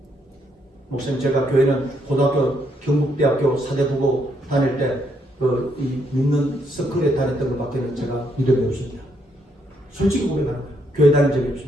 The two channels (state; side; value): normal; both; correlation 0.74